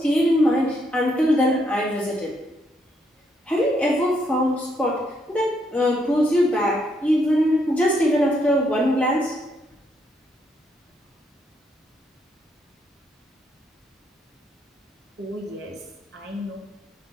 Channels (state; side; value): normal; both; correlation 0.75